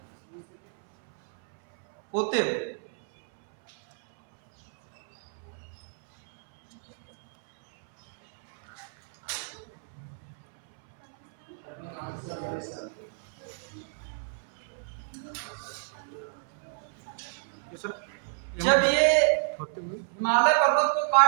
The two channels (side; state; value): left; silent; 59 dB below the other